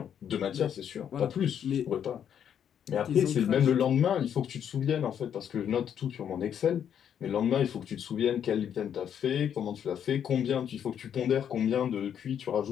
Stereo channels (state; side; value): quieter; right; 8.9 dB